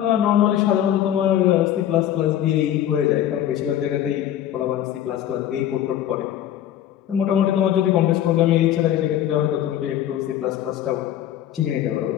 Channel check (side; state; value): right; quieter; 11.4 dB